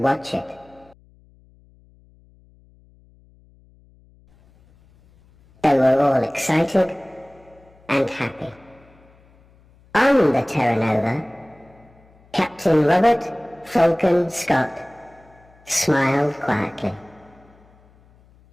it. They were all excited and happy. On the Terra Nova, Captain Robert Falcon Scott smiled quietly.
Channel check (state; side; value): noise; left; hum, 29 dB below the sound